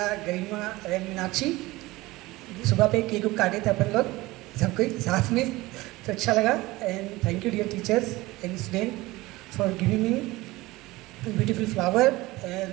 Garima and Meenakshi. सुबह पे केक काटे थे अपन लोग सब कोई साथ में, तो अच्छा लगा। And thank you dear teachers and student for giving me beautiful flower and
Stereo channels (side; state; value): left; quieter; 19.9 dB